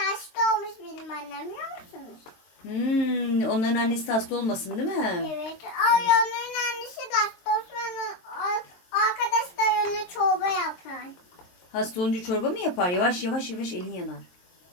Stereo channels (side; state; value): right; late; 23 ms